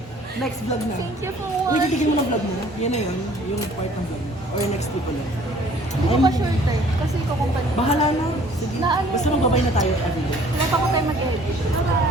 Next vlog na. Thank you for Uy, watching. titigil mo ng vlog mo. Yan na yun, yung part ng vlog mo. Or next week ulit. Hindi ko pa sure tayo. Kasi ikaw kung paano. Bahala na. Sige. Na ano? Basta magbabay na tayo everyday. Wala pa ko tayo mag-edit.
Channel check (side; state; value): both; normal; correlation 0.55